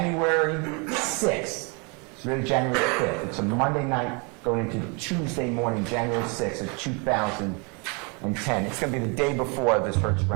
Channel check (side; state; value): left; quieter; 32.7 dB